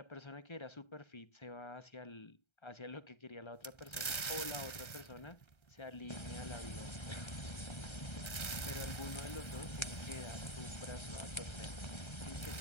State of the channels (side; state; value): right; late; 1.3 ms